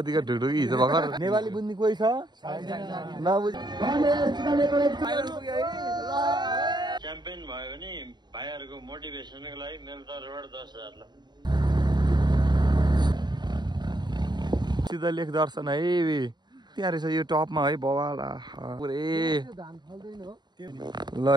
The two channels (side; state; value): left; late; 0.21 ms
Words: ढुढुकी हिजो भर्खर नेपाली बुझ्ने कोही छ नबुझ च्याम्पियन भयो भने भाइहरुको मोटिभेसनको लागि मेरो तर्फबाट 10,000 ल। सिधा लेख दर्शन है त्यहाँ रहेछ यो टपमा है बवाल पुरै ल